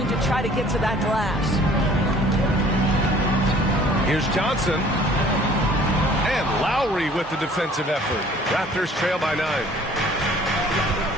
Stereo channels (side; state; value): both; normal; correlation 0.53